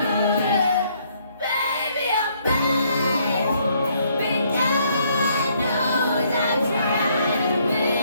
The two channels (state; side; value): inverted; both; correlation -0.68